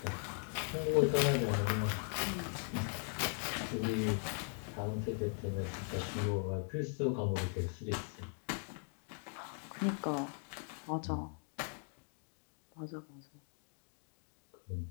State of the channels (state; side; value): silent; right; 51 dB below the other